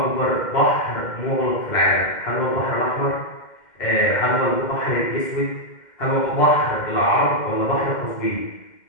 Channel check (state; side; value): late; right; 2.1 ms